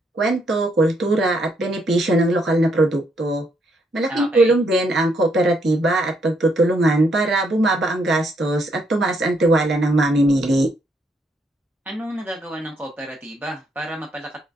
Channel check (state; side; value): normal; both; correlation 0.74